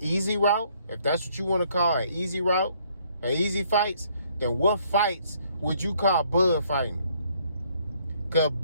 route, if that's what you want to call an easy route, an easy fights, then what fights would you call Bud fighting? Because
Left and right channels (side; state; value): both; inverted; correlation -0.65